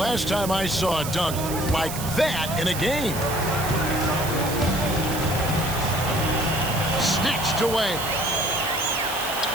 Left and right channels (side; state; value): right; noise; hiss, 8 dB below the sound